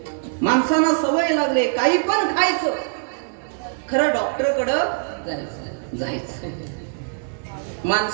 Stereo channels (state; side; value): silent; left; digital silence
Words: माणसांना सवय लागले काही पण खायचं. खरं डॉक्टरकडं जायचं.